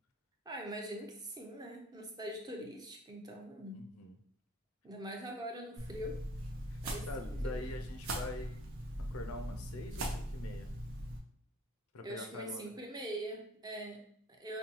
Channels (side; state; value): both; normal; correlation 0.54